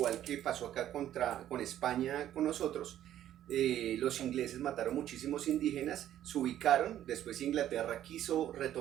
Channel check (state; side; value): quieter; left; 11.8 dB